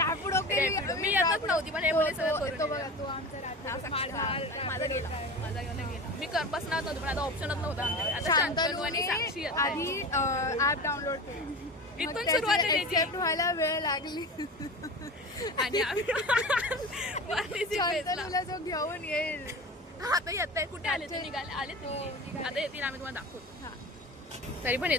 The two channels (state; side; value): normal; both; correlation 0.31